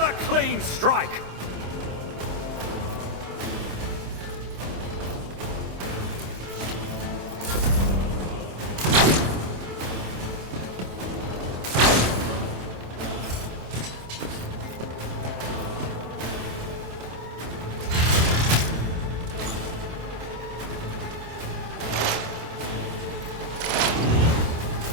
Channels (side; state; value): left; late; 26 ms